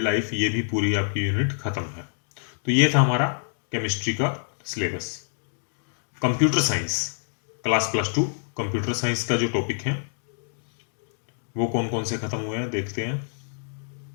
लाइफ, ये भी पूरी आपकी यूनिट खत्म है। तो ये था हमारा केमिस्ट्री का syllabus. Computer science class +2 computer science का जो टॉपिक है वो कौन कौन से खत्म हुए हैं देखते हैं।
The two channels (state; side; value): silent; right; digital silence